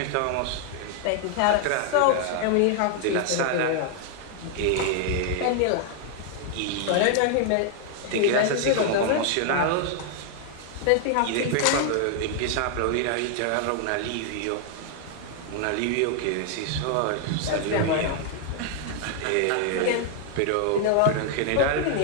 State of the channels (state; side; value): different; both; correlation 0.00